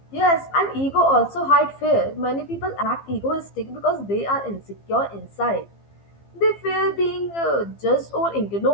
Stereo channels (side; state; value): right; late; 15 ms